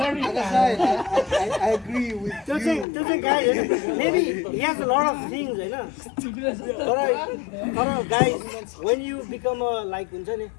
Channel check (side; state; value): right; drops out; at 2.9 s